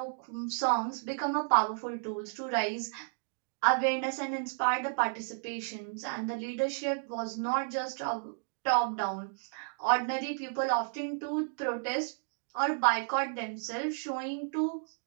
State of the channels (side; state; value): left; silent; digital silence